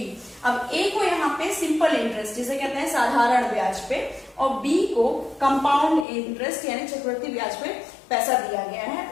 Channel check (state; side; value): drops out; right; at 6.1 s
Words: अब ए को यहाँ पे सिंपल इंटरेस्ट जिसे कहते हैं साधारण ब्याज पे, और बी को कंपाउंड इंटरेस्ट यानी चक्रवृद्धि ब्याज पे पैसा दिया गया है